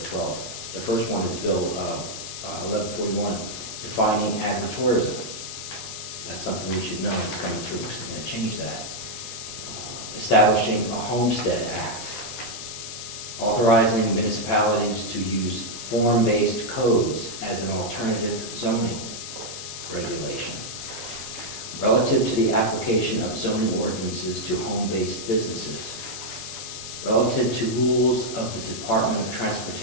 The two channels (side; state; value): left; noise; hiss, 8 dB below the sound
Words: 12. The first one is Bill 1141, defining agritourism. That's something we should know is coming through, because they're going to change that. Establishing a Homestead Act, authorizing municipalities to use form-based codes as an alternative zoning regulation. Relative to the application of zoning ordinances to home-based businesses. Relative to rules of the Department of